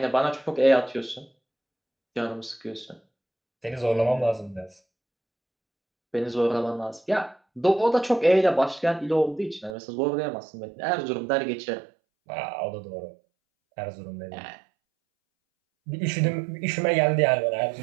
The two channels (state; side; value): drops out; left; at 9.8 s